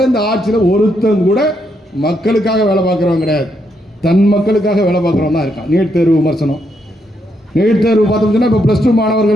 இந்த ஆட்சியில் ஒருத்தன் கூட மக்களுக்காக வேலை பார்க்குறவங்க கிடையாது. தன் மக்களுக்காக வேலை பார்க்குறவங்க தான் இருக்கான். நீட் தேர்வு விமர்சனம், நீட் தேர்வு பார்த்தோம்னா இப்போ +2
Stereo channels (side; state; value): both; normal; correlation 0.78